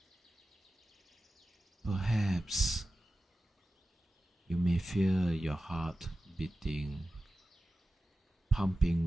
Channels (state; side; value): normal; both; correlation 0.94